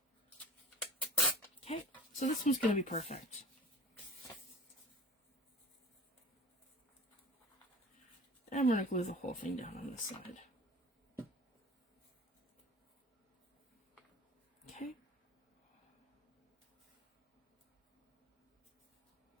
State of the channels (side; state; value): both; normal; correlation 0.42